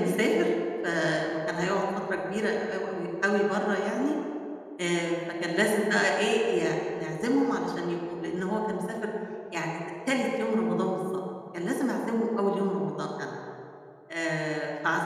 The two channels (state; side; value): identical; both; correlation 1.00